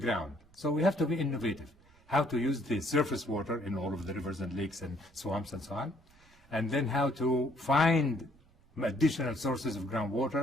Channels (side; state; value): right; noise; rumble, 29 dB below the sound